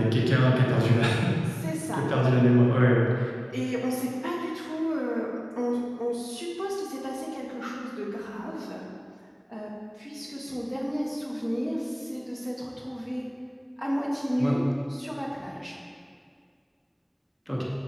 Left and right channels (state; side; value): identical; both; correlation 1.00